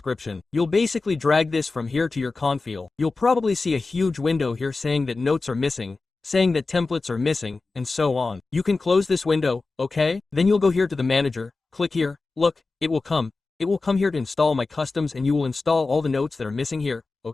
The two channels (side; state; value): right; quieter; 3.8 dB